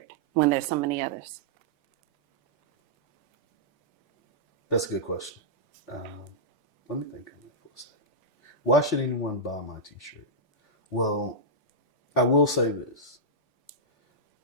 when there's so many others? That's a good question. Let me think on that for a second. Why should anyone buy my t-shirt? Well, I will say this.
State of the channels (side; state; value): both; normal; correlation -0.09